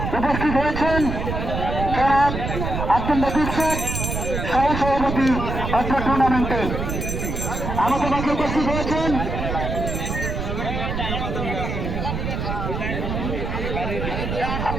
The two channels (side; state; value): right; noise; rumble, 3 dB below the sound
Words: উপস্থিত হয়েছেন জনাব আব্দুল লতিফ শেখ, সহসভাপতি অত্র টুর্নামেন্টের। আমাদের মাঝে উপস্থিত হয়েছেন